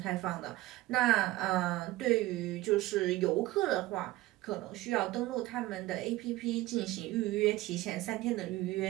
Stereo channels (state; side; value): quieter; left; 17.9 dB